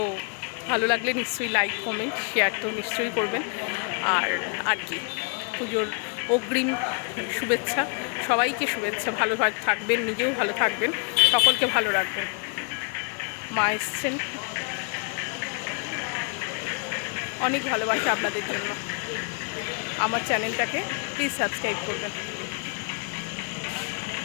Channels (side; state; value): right; quieter; 39.4 dB